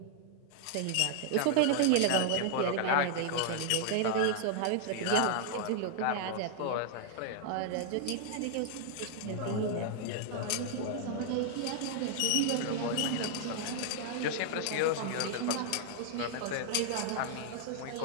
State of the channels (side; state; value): both; different; correlation 0.00